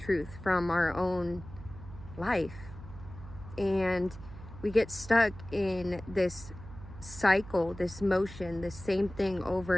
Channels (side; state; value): right; noise; hum, 15 dB below the sound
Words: from our own life. And we get stuck in this cycle, this motion, the same thing over